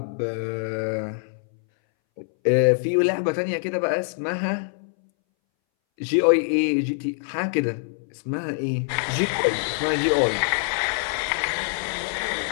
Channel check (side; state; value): right; silent; 61 dB below the other